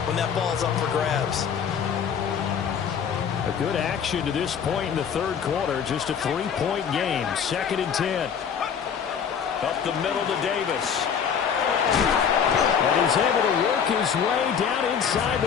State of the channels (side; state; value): right; quieter; 7.4 dB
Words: when that ball's up for grabs. A good action to this point in the 3rd quarter. Just a 3-point game. 2nd and 10. Up the middle to Davis. And he's able to work his way down inside